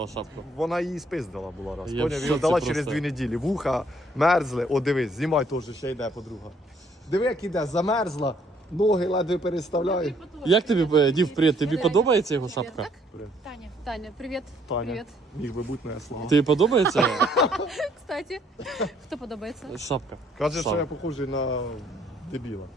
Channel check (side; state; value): both; normal; correlation 0.66